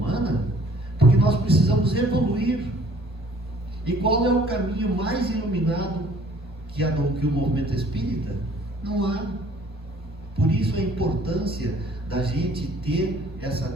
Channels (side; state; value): both; normal; correlation 0.56